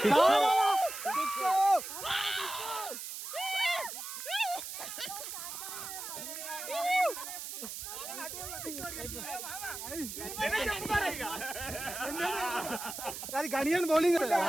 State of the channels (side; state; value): right; noise; hiss, 8 dB below the sound